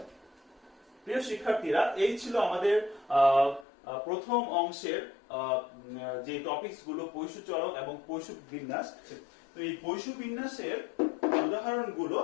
প্রিয় শিক্ষার্থীরা, এই ছিল আমাদের প্রথম অংশের যে টপিকস গুলো পৈশু চলক এবং পৈশু বিন্যাস। তো এই পৈশু বিন্যাসের উদাহরণগুলো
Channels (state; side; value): drops out; right; at 3.7 s